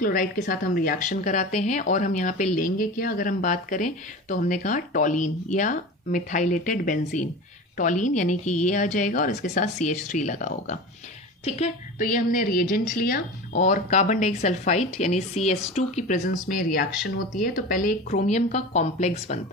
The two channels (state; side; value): normal; both; correlation 0.31